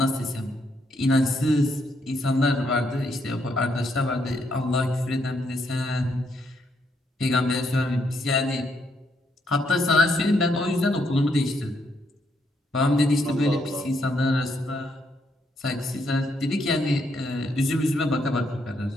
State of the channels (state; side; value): normal; both; correlation 0.75